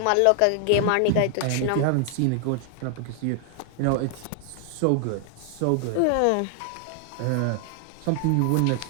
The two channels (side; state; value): both; different; correlation 0.00